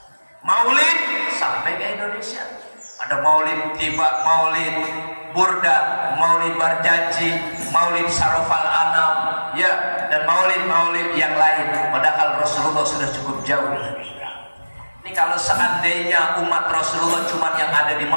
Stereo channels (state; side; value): inverted; both; correlation -1.00